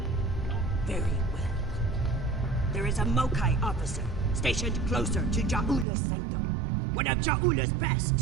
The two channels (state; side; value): drops out; left; at 5.9 s